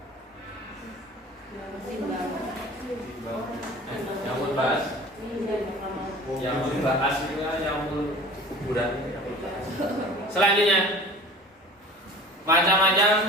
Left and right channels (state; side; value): normal; both; correlation 0.42